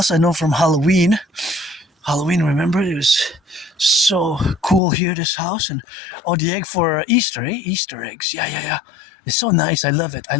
I know from Halloween, remember? It was so cool here, this house. And the egg for Easter, Easter eggs. Yeah. It's so nice. I love it. I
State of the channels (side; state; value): right; drops out; at 4.8 s